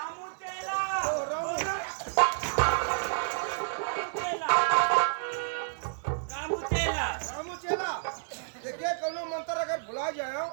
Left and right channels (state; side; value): silent; left; digital silence